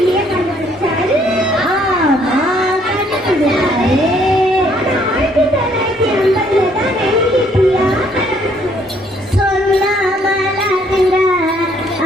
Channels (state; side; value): normal; both; correlation 0.65